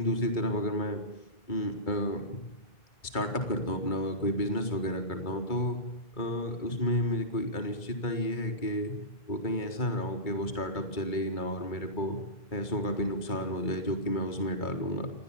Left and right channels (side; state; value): right; late; 2.3 ms